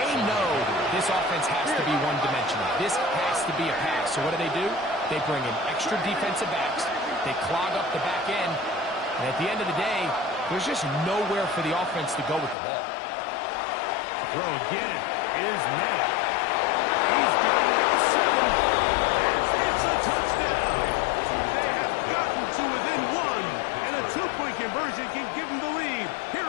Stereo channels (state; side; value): drops out; right; at 12.6 s